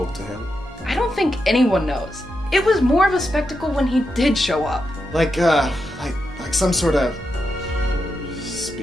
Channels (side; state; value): both; normal; correlation 0.86